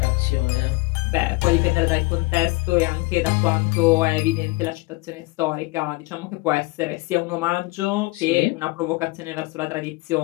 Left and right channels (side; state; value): right; quieter; 23.4 dB